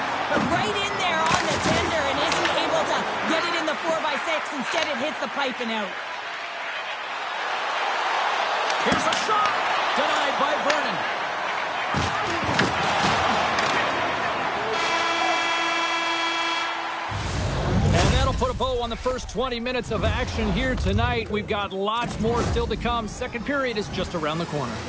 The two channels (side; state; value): both; identical; correlation 1.00